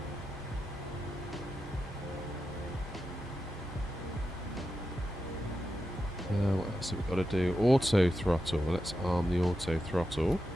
What else have we got to do? Auto throttle. Let's arm the auto throttle.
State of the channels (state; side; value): normal; both; correlation 0.89